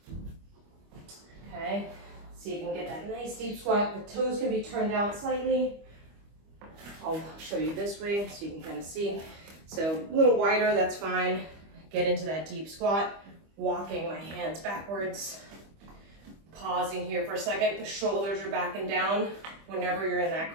Okay, so you can get that nice deep squat. The toes can be turned out slightly. I'll show you this way so you can kind of see. So a little wider, that's fine. Get into that deep squat, walking my hands backwards. Pausing here for a second. The shoulders are back and down whenever you're in that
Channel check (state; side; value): late; left; 25 ms